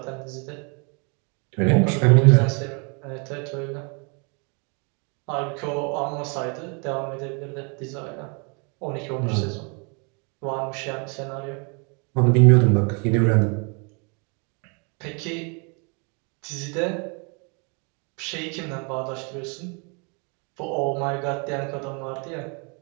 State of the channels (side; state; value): left; quieter; 34.9 dB